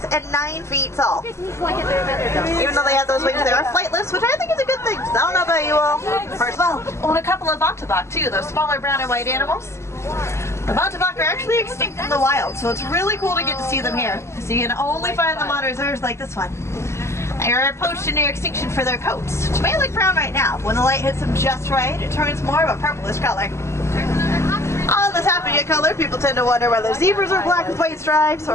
and 9 feet tall. Even though they have those wings, they are flightless, which I think is a good thing. So I don't know about you all. First of all, own a couple of Bontebok too, those smaller brown and white animals. The Bontebok are actually extinct in the wild, so it's really cool to get to see them here. So you can only find them on reserves like this one. They are poached to near extinction for their coats, which may look brown right now. When the light hits them just right, it turns more of a purplish color. On the top of your color, people tend to wonder whether zebras are black with white stripes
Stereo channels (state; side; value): late; right; 0.13 ms